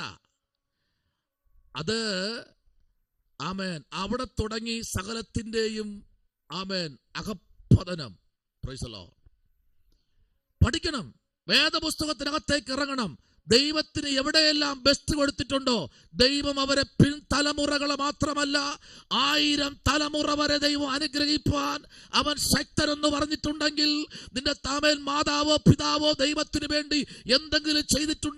അത് ആമേൻ, അവിടെ തുടങ്ങി സകലത്തിന്റെയും ആമേൻ അകപ്പതനം. Praise the lord. പഠിക്കണം, വേദപുസ്തകത്തിനകത്തേക്ക് ഇറങ്ങണം. ദൈവത്തിന് എവിടെയെല്ലാം ബെസ്റ്റ് കൊടുത്തിട്ടുണ്ടോ ദൈവം അവരെ പിൻതലമുറകളെ മാത്രമല്ല 1000 തലമുറ വരെ ദൈവം അനുഗ്രഹിപ്പാൻ അവൻ ശക്തനെന്ന് പറഞ്ഞിട്ടുണ്ടെങ്കിൽ, നിന്റെ താമേൽ മാതാവോ പിതാവോ ദൈവത്തിന് വേണ്ടി എന്തെങ്കിലും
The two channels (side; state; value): both; identical; correlation 1.00